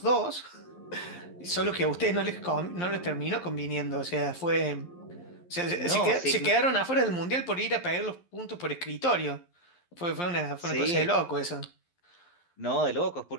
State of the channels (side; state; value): right; late; 11 ms